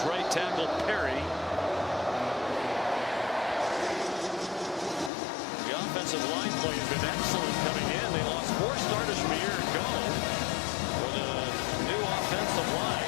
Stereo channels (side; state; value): right; drops out; at 5.1 s